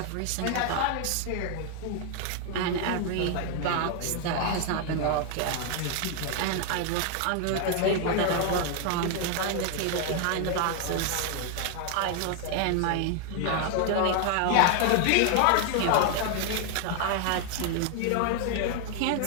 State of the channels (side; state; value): both; different; correlation 0.00